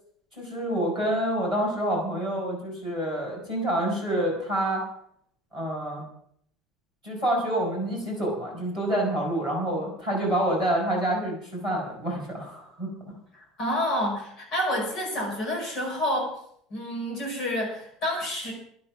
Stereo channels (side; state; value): both; normal; correlation 0.40